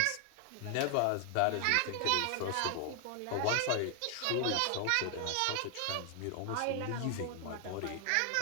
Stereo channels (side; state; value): both; different; correlation 0.00